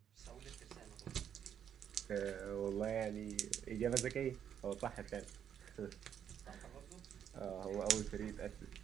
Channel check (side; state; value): left; quieter; 8.9 dB